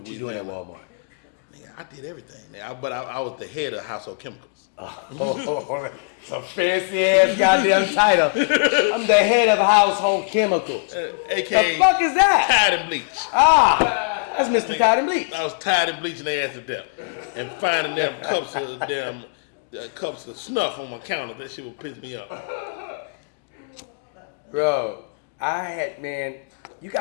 you doing at Walmart? Nigga, I did everything. But I was the head of household chemicals. Some fancy ass goddamn title. I'm the head of household chemicals. AKA the fuck is that? Tide and bleach. That's Mr. Tide and Bleach. I was tired of bleaching their ass to death and finding them cups of snuff on my counter. That shit would piss me off. Bro, you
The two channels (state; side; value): quieter; right; 39.1 dB